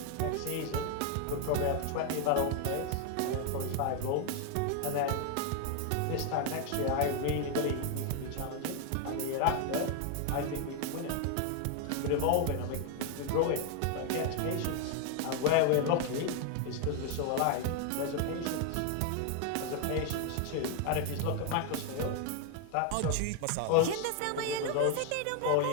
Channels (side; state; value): both; different; correlation 0.01